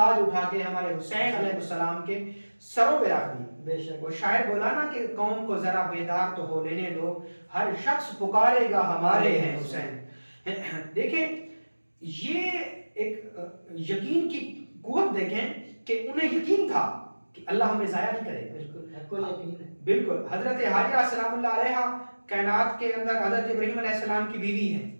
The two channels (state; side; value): inverted; both; correlation -1.00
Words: اٹھا کے ہمارے حسین علیہ السلام کے سروں پہ رکھ دی. بے شک. وہ شاعر بولا نا کہ قوم کو ذرا بیدار تو ہو لینے دو, ہر شخص پکارے گا ہمارے ہیں حسین. دیکھیں یہ ایک یقین کی قوت دیکھیں کہ انہیں یقین تھا کہ اللہ ہمیں ضائع نہیں کرے گا. بالکل حق یقین ہے. بالکل. حضرت حاجرہ سلام اللہ علیہ کائنات کے اندر حضرت ابراہیم علیہ السلام کی بیوی ہیں,